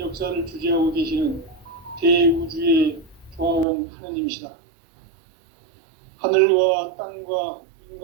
주재하고 계시는 대우주의 조화원 하느님이시다. 하늘과 땅과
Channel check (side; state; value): left; drops out; at 3.7 s